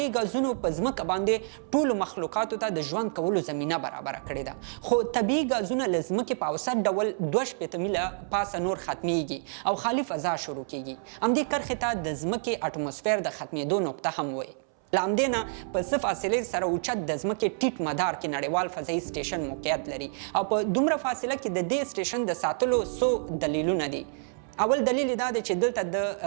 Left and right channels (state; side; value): silent; left; 59 dB below the other